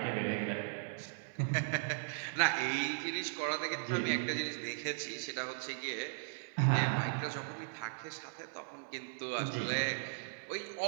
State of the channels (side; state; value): left; silent; 53 dB below the other